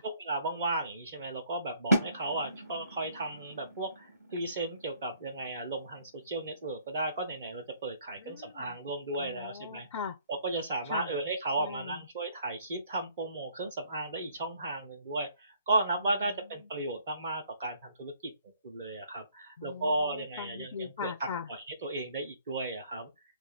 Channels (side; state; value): both; inverted; correlation -0.61